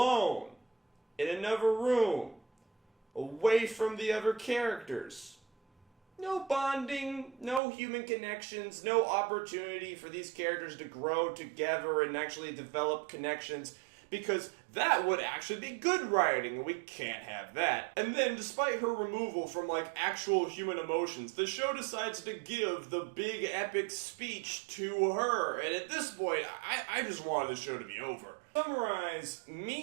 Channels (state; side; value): drops out; left; at 7.6 s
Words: In another room, away from the other characters. No bonding, no human connections, no opportunity for these characters to grow together and actually develop connections, because that would actually be good writing, and we can't have that. And then, despite her removal from, like, actual human emotions, the show decides to give the big epic speech to her, and at this point, I just wanted the show to be over. To summarize,